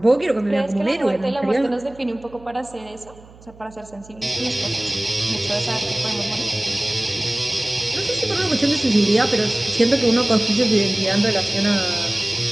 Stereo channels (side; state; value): right; noise; hum, 23 dB below the sound